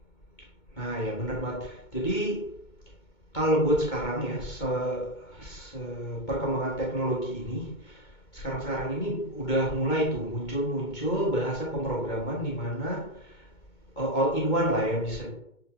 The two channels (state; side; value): late; right; 2.2 ms